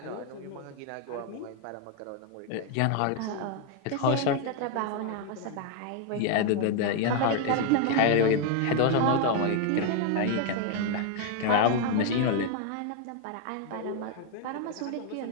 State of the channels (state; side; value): different; both; correlation 0.01